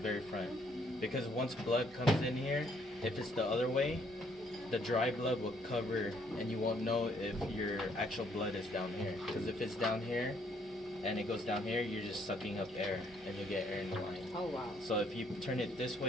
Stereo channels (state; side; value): normal; both; correlation 0.67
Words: front. Because once blood comes in here, if it's the other way, the dry blood will cover and you won't know if your actual blood is down here. Because if it's down here and it goes down here, you're just sucking up air and you'll get air in the line. Oh wow. So if you turn it this